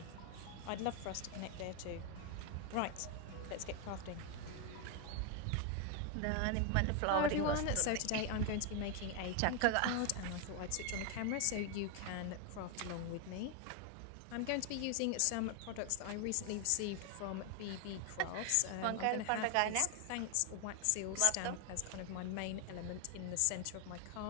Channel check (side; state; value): both; different; correlation 0.01